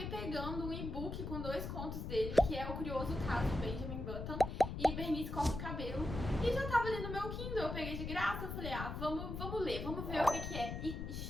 pegando um e-book com 2 contos dele, que é O Curioso Caso de Benjamin Button e Bernice Corta o Cabelo. E já tava ali no meu Kindle, eu peguei de graça, eu falei, vamos ler, vamos ver o que é. E,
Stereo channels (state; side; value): noise; left; rumble, 5 dB below the sound